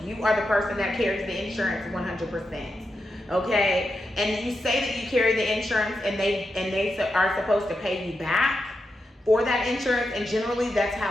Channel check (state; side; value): normal; both; correlation 0.87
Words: you are the person that carries the insurance 100%. Okay? And you say that you carry the insurance and they are supposed to pay you back for that insurance, and generally that's